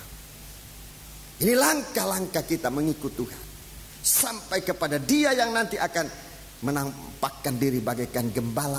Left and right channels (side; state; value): both; identical; correlation 1.00